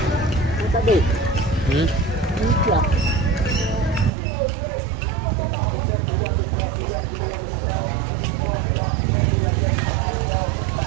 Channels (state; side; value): drops out; left; at 4.1 s